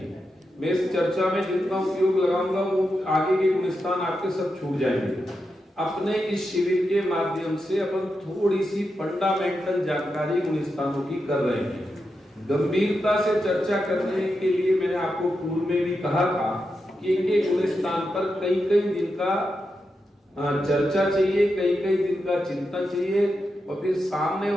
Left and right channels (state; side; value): normal; both; correlation 0.87